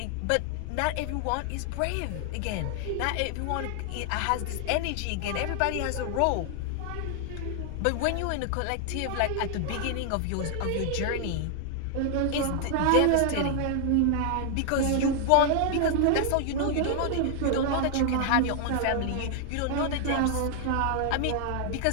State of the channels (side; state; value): both; different; correlation 0.00